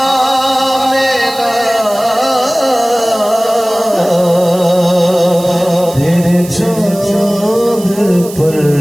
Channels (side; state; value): right; noise; hiss, 15 dB below the sound